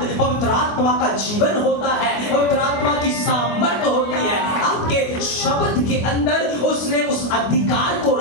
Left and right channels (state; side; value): late; right; 25 ms